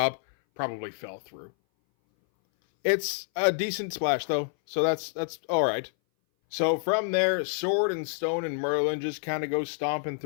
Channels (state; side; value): silent; right; 58 dB below the other